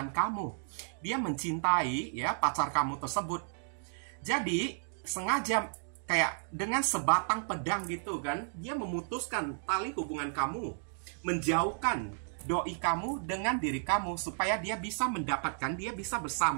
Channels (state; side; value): silent; left; digital silence